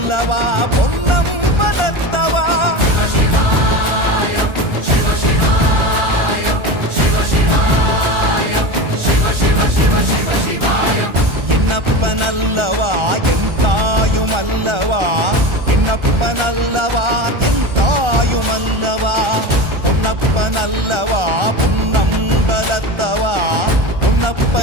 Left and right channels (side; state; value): left; late; 1.3 ms